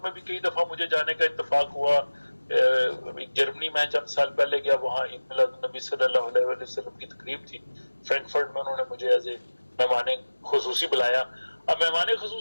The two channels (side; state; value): both; inverted; correlation -1.00